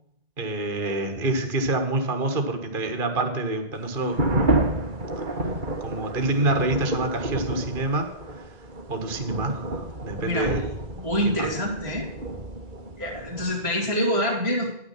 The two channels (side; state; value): left; late; 1.9 ms